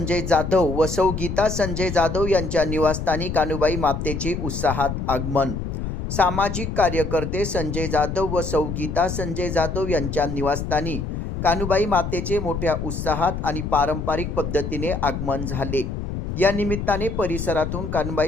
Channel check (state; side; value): noise; left; rumble, 4 dB below the sound